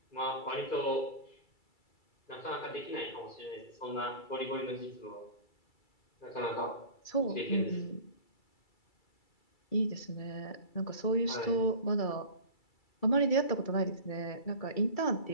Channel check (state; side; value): late; right; 2.3 ms